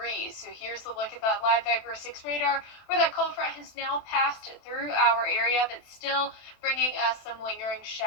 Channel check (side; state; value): right; late; 27 ms